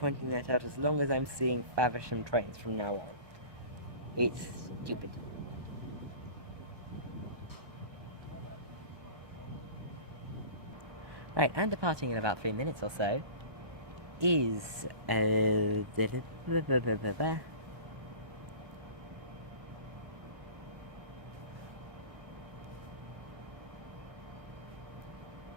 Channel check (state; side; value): late; left; 1.2 ms